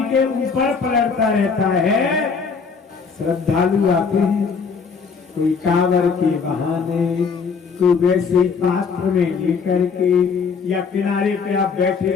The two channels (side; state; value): right; quieter; 5.5 dB